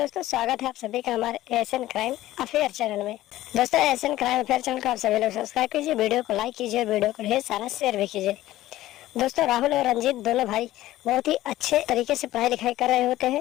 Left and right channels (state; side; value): quieter; right; 15.3 dB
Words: स्वागत है आप सभी का हमारे एएसएन क्राइम अफेयर चैनल में। दोस्तों, एएसएन क्राइम अफेयर चैनल को आप सभी लोग सब्सक्राइब कीजिए, वीडियो को लाइक कीजिए और वीडियो को ढेर सारा शेयर भी कीजिए। दोस्तों, राहुल और रंजीत दोनों भाई बहुत ही अच्छे तरीके से पढ़ाई लिखाई कर रहे होते